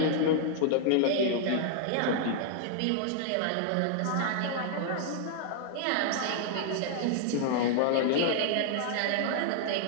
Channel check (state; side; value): different; both; correlation -0.01